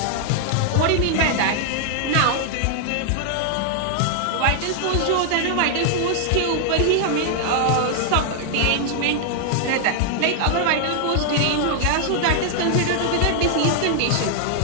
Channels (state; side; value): different; both; correlation 0.00